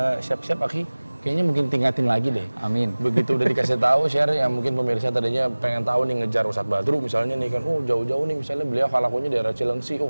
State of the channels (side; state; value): both; inverted; correlation -1.00